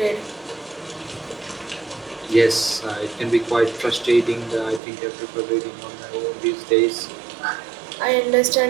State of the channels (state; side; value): drops out; left; at 4.8 s